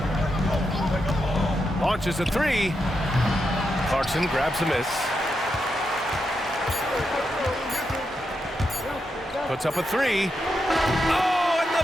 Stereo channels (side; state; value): both; normal; correlation 0.85